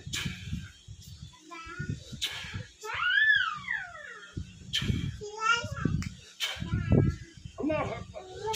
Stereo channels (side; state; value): both; identical; correlation 1.00